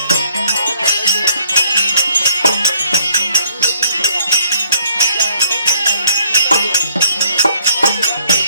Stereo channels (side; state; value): both; inverted; correlation -0.63